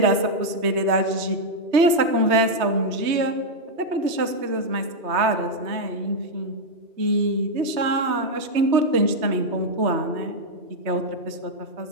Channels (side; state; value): left; late; 3.2 ms